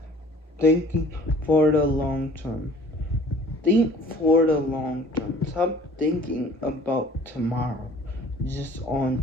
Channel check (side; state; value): both; normal; correlation 0.51